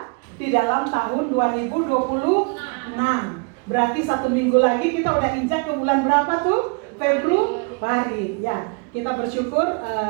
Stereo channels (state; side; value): quieter; left; 33.3 dB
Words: di dalam tahun 2026. Berarti 1 minggu lagi kita udah injak ke bulan berapa tuh? Februari. Ya, kita bersyukur